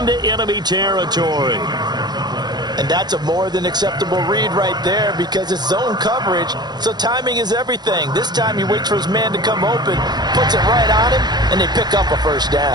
enemy territory. And that's a more than acceptable read right there because it's zone coverage, so timing is everything. This time he waits for his man to come open, puts it right on him, and they pick up a first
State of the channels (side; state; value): left; late; 0.20 ms